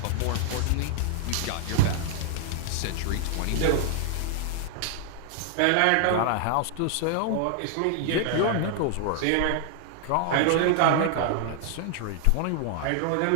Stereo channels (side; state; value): both; different; correlation 0.00